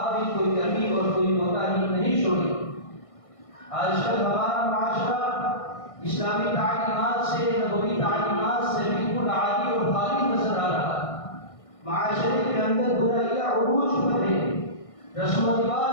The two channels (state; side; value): late; right; 1.6 ms